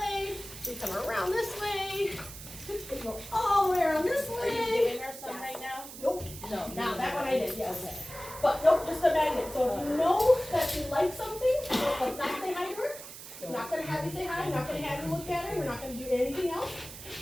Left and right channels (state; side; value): noise; right; hiss, 13 dB below the sound